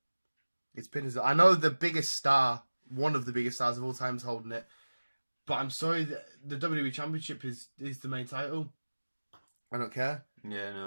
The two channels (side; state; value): both; inverted; correlation -1.00